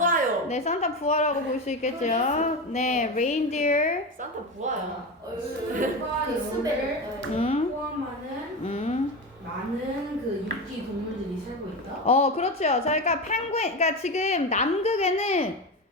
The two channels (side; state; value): both; normal; correlation 0.21